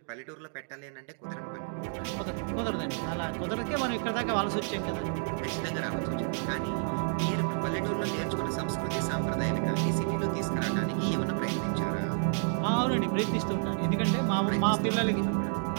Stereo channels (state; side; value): silent; left; 58 dB below the other